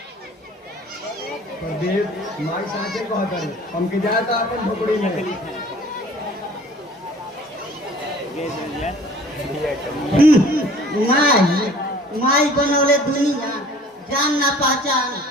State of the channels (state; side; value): normal; both; correlation 0.50